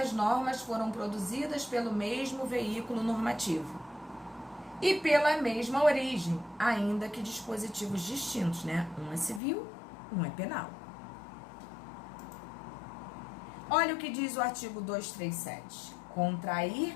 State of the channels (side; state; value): right; drops out; at 9.4 s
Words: normas foram produzidas pelo mesmo veículo normativo e pela mesma origem, ainda que dispositivos distintos, né? Um é civil, um é penal. Olha o que diz o artigo 237.